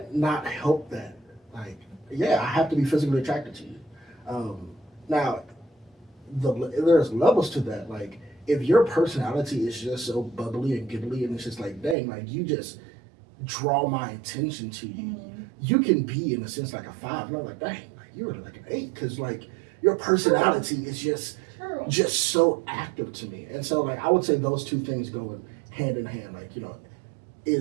not help that. Like, yeah, I have to be physically attracted to you. Now, there's levels to that. Like, if your personality is just so bubbly and giggly, and it's just like, dang, like, you just draw my attention to you. Mm-hmm. You can be, in a sense, like a 5. And I'm like, dang, like, you're like an 8. Because, like, your personality is just so active to me. And so, like, I would say those two things go hand in hand. Like,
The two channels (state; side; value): drops out; left; at 12.0 s